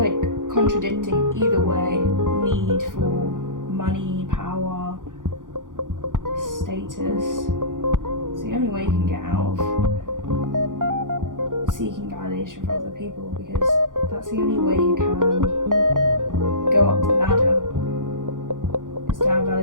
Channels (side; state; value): left; late; 0.88 ms